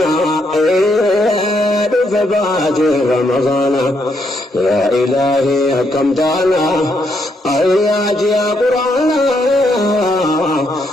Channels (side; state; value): both; normal; correlation 0.76